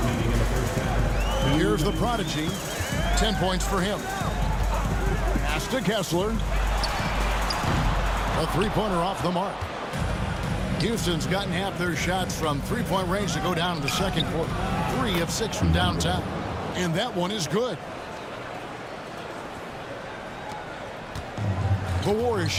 Here's the Prodigy. 10 points for him. Pass to Kessler. A three-pointer off the mark. Houston's gotten half their shots from three-point range to go down in the second quarter. 3 of 6 from downtown. And that one is good. The Warriors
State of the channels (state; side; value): identical; both; correlation 1.00